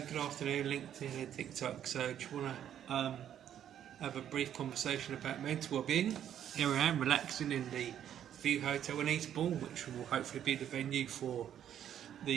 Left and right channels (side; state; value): left; quieter; 10.1 dB